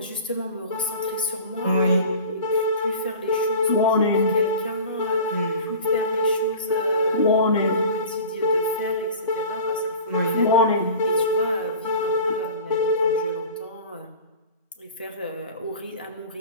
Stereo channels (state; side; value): inverted; both; correlation -0.39